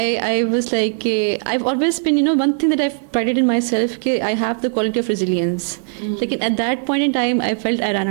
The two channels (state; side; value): silent; left; 58 dB below the other